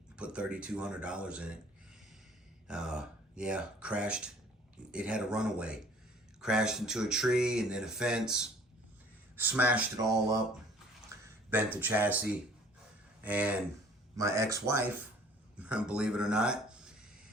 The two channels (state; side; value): normal; both; correlation 0.53